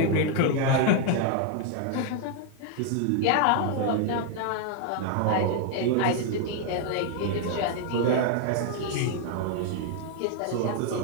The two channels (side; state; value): both; different; correlation 0.00